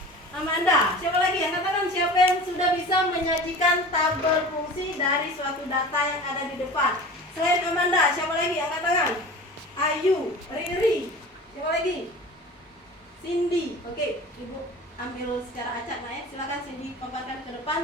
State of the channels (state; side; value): normal; both; correlation 0.37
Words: Amanda. Siapa lagi yang katakan siapa yang sudah bisa menyajikan tabel fungsi dari suatu data yang ada di depan? Selain Amanda, siapa lagi yang katakan? Ayu, Riri. Siapa lagi? Cindy. Oke, Ibu ambil secara acak ya. Silakan Cindy paparkan ke